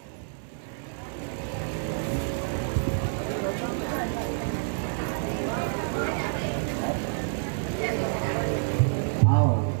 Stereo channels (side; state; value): left; silent; digital silence